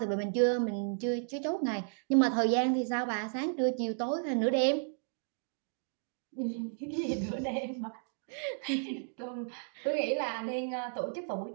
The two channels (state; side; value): silent; left; 55 dB below the other